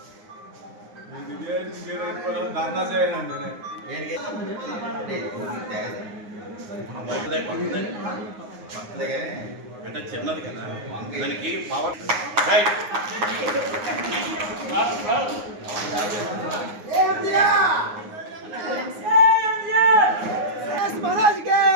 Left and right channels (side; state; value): left; late; 9.6 ms